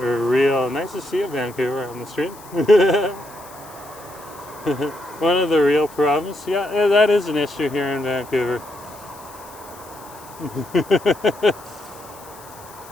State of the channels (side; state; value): left; noise; hiss, 21 dB below the sound